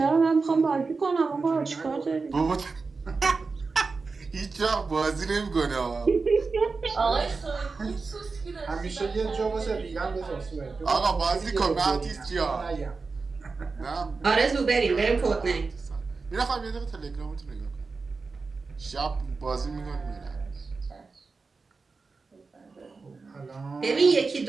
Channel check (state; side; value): quieter; left; 4.3 dB